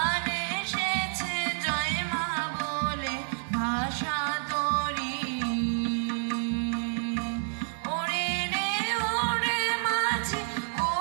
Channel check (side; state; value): left; silent; digital silence